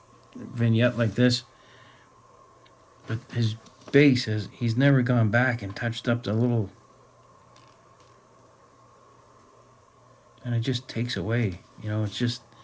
vignette like this, but his base he's never gone back and touched up the little, and it just takes away, you know, it's just,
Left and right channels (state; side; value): identical; both; correlation 1.00